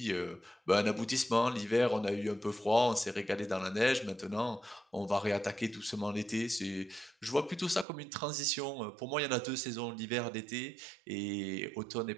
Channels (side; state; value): left; drops out; at 7.9 s